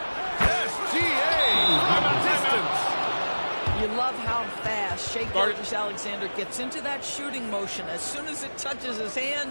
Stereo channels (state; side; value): inverted; both; correlation -1.00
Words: SGA from a distance. You love how fast Shai Gilgeous-Alexander gets into that shooting motion. As soon as it touches his